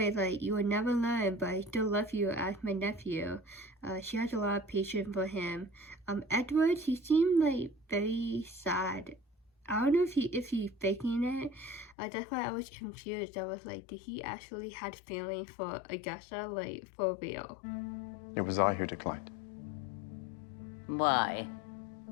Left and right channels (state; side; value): drops out; right; at 12.0 s